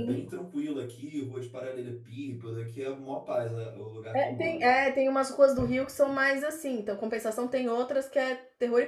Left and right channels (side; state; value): both; identical; correlation 1.00